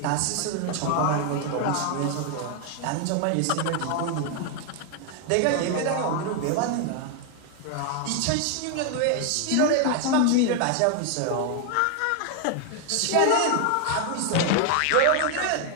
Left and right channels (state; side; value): different; both; correlation 0.01